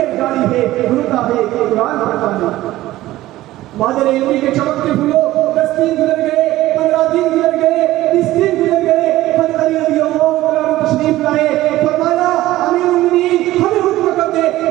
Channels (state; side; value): quieter; left; 16.0 dB